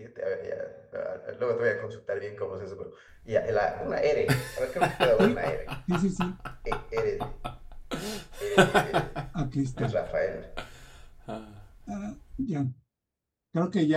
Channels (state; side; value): identical; both; correlation 1.00